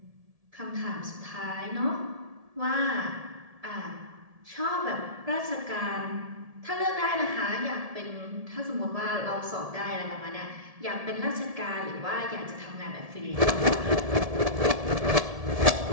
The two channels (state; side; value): late; left; 1.7 ms